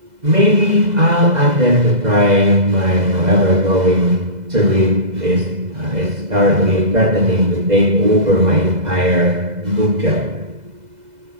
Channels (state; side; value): late; left; 2.0 ms